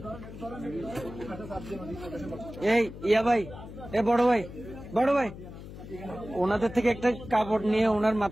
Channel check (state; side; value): noise; left; hum, 13 dB below the sound